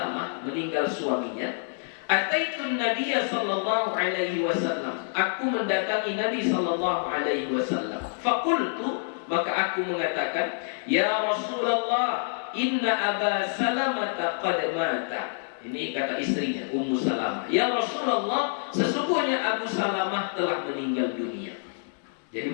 meninggal suaminya, ataitun Nabiya sallallahu alaihi wasallam, aku mendatangi Nabi sallallahu alaihi wasallam. Faqultu, maka aku mengatakan, ya Rasulullah, inna Aba Salamah qad mata. Ini kata istrinya, Ummu Salamah. Ya Rasulullah, sesungguhnya Abu Salamah telah meninggal dunia. Jadi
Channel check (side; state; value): right; silent; 60 dB below the other